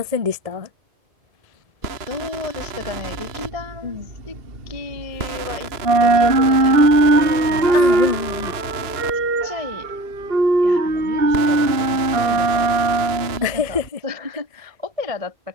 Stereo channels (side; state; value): left; late; 2.9 ms